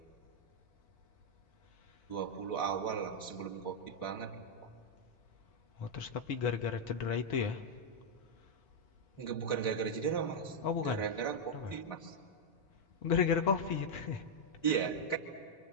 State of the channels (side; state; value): right; late; 3.8 ms